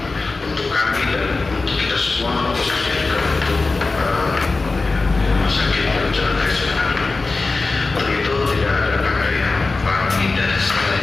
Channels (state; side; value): quieter; right; 3.7 dB